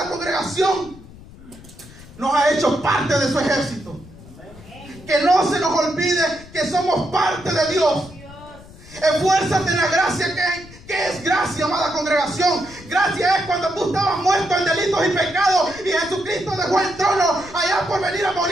congregación, nos ha hecho parte de su ejército. Que no se nos olvide que somos parte de Dios. Esfuérzate en la gracia ¿Qué es gracia, amada congregación? Gracia es cuando tú estabas muerto en delitos y pecados y Jesucristo dejó el trono allá por venir a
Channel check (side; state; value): left; noise; rumble, 20 dB below the sound